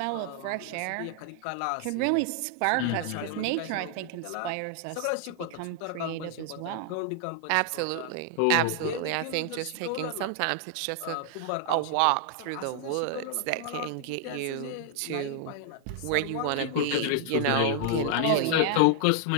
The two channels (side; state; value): both; different; correlation 0.00